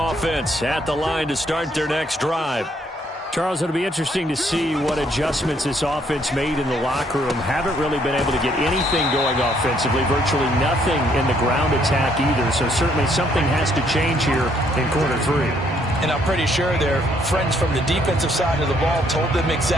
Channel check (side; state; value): both; normal; correlation 0.68